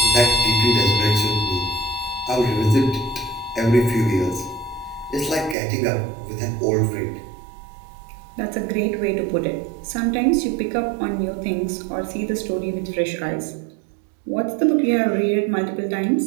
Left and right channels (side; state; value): left; drops out; at 5.6 s